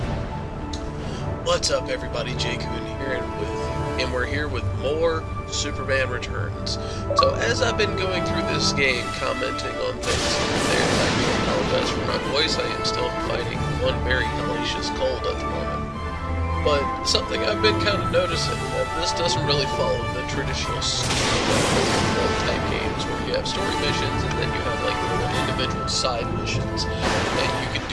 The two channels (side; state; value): both; identical; correlation 1.00